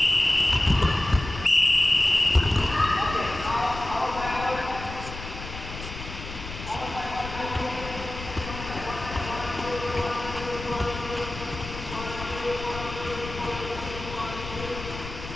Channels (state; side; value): noise; left; rumble, 10 dB below the sound